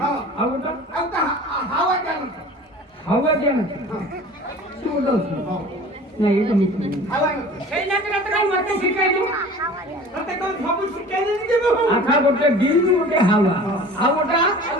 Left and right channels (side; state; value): both; normal; correlation 0.42